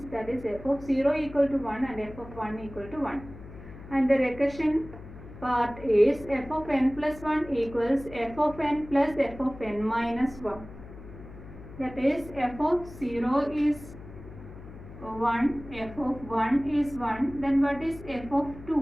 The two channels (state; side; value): noise; left; hum, 16 dB below the sound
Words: that is f of 0 equal to 1 and f of 1 equal to 1. And the recursion part is f of n plus 1 equals f of n plus f of n minus 1. That is f of 0 is 1, f of 1 is 1, then what is f of